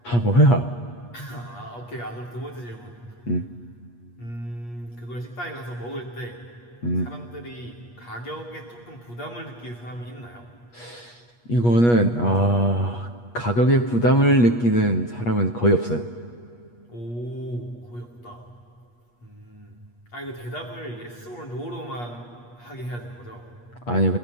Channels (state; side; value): late; right; 8.4 ms